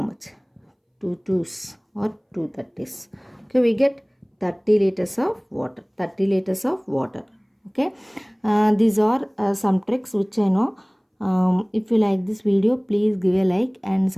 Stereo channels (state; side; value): identical; both; correlation 1.00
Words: much? 2 2s or 2 30s. Okay, we get 30 liters of water. 30 liters of water. Okay, these are some tricks which I know. If you like this video, please give a like and